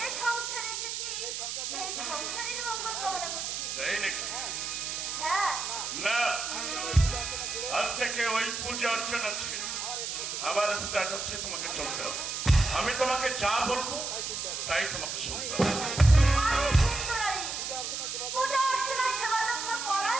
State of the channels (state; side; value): noise; right; hiss, 4 dB below the sound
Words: সংসারে এসেছি সেই সংসারের মঙ্গল কামনা করছি। তাই নাকি? হ্যাঁ, না, আজ থেকে ওই পূজা অর্চনা ছেড়ে আমার স্টার্ট হচ্ছে, তোমাকে চলতে হবে। আমি তোমাকে যা বলবো তাই তোমাকে শুনতে হবে। আমি হিন্দু নারী, পূজা অর্চনা সেবা যত্ন